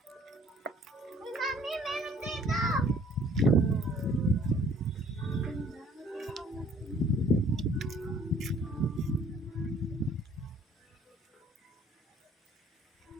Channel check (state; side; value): normal; both; correlation 0.57